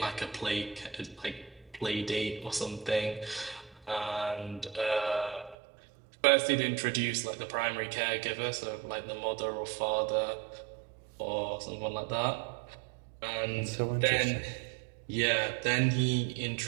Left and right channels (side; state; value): left; drops out; at 5.6 s